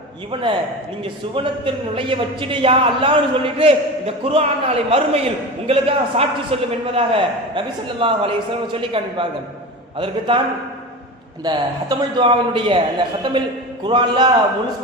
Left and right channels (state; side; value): normal; both; correlation 0.28